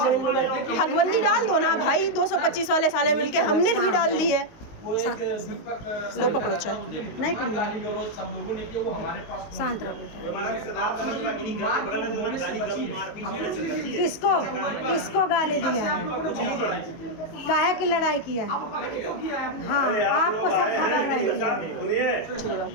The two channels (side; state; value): right; late; 19 ms